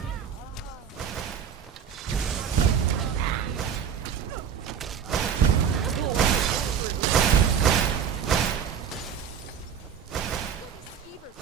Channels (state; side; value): quieter; left; 7.8 dB